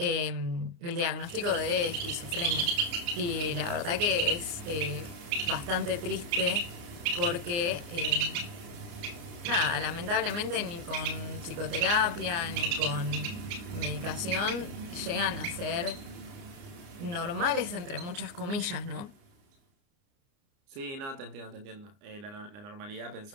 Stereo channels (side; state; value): left; late; 29 ms